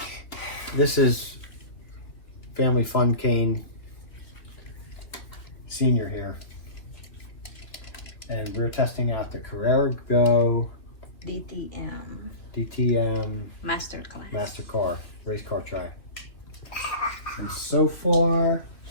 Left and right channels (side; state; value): right; late; 3.2 ms